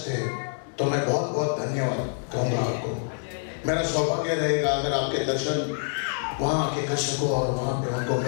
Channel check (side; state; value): right; silent; digital silence